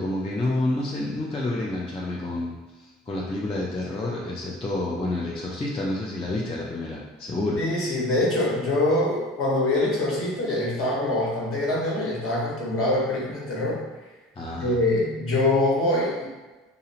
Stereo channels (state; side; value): normal; both; correlation 0.40